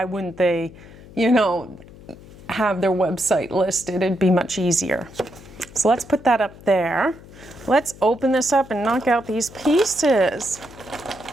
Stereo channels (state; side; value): noise; left; hum, 20 dB below the sound